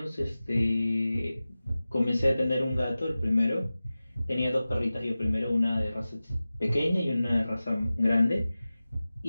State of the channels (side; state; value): both; inverted; correlation -0.96